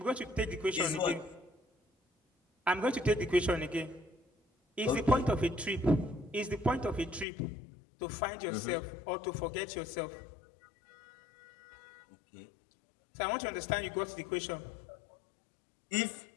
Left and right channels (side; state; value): right; drops out; at 7.2 s